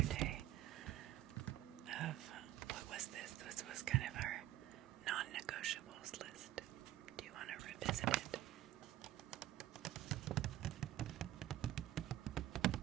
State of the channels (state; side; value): quieter; left; 14.1 dB